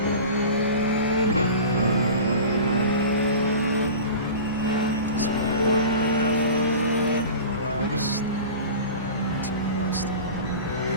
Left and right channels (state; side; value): inverted; both; correlation -0.35